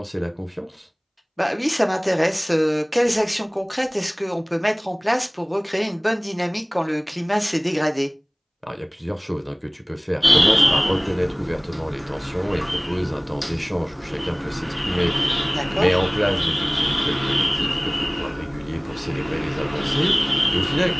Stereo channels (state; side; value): identical; both; correlation 1.00